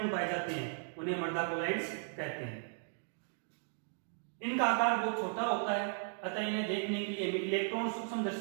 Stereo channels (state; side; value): silent; left; 54 dB below the other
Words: गुण पाए जाते हैं उन्हें मृदा कोलाइड्स कहते हैं। इनका आकार बहुत छोटा होता है, अतः इन्हें देखने के लिए इलेक्ट्रॉन